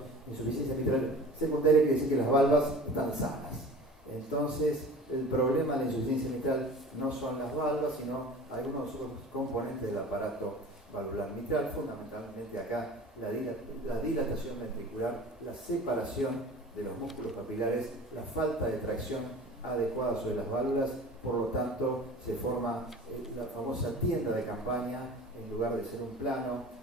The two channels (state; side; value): normal; both; correlation 0.40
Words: Insuficiencia mitral secundaria quiere decir que las valvas están sanas. Entonces, el problema de la insuficiencia mitral no son las valvas, sino algunos otros componentes del aparato valvular mitral, fundamentalmente acá la dilatación ventricular, la separación de los músculos papilares, la falta de tracción adecuada sobre las válvulas. Por lo tanto, se forma la famosa tienda de campaña en lugar de ser un plano.